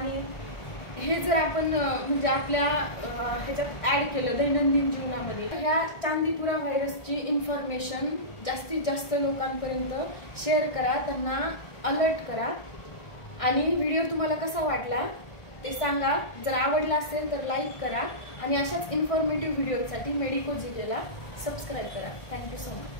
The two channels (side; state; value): right; late; 1.4 ms